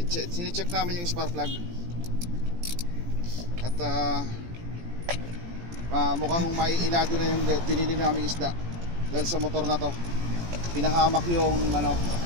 Sine-check namin yung spark plug. At mukhang maiilado na yung binili naming isda. Dahil sa motor na to pinahamak yung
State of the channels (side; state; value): left; late; 17 ms